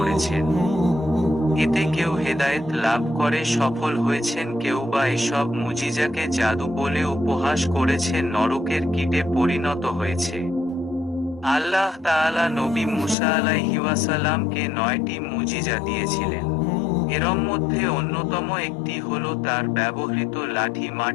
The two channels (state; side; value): drops out; right; at 13.2 s